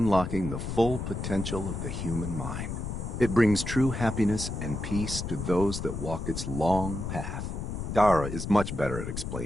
the full potential of the human mind. It brings true happiness and peace to those that walk its long path. Dara is much better at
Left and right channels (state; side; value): noise; left; rumble, 5 dB below the sound